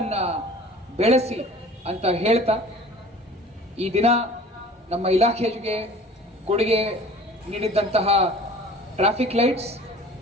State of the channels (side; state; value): both; normal; correlation 0.46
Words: ಬೆಳೆಸಿ ಅಂತ ಹೇಳ್ತಾ, ಈ ದಿನ ನಮ್ಮ ಇಲಾಖೆಗೆ ಕೊಡುಗೆ ನೀಡಿದಂತಹ ಟ್ರಾಫಿಕ್ ಲೈಟ್ಸ್